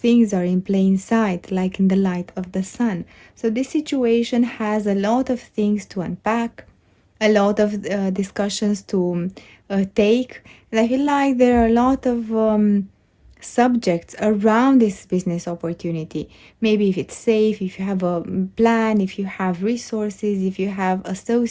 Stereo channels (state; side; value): identical; both; correlation 1.00